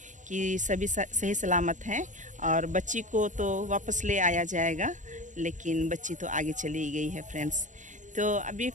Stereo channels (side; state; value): left; late; 0.36 ms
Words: कि सभी सही सलामत हैं और बच्ची को तो वापस ले आया जाएगा। लेकिन बच्ची तो आगे चली गई है फ्रेंड्स। तो अभी